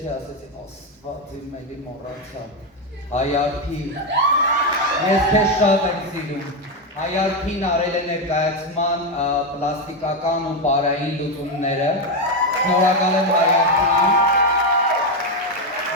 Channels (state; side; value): normal; both; correlation 0.08